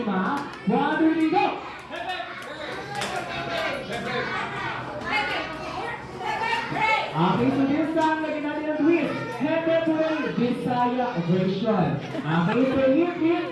Ma. One, two, go! Okay, so this time, lagyan natin ang twist. Hepe Puri, Bisaya version. Okay, so hip, hip,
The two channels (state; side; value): identical; both; correlation 1.00